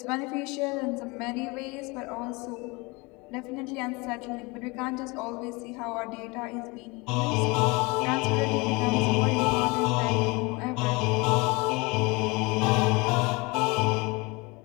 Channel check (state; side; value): quieter; right; 26.2 dB